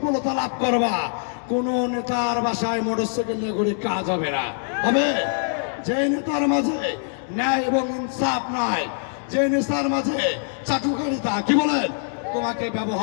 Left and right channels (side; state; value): right; silent; digital silence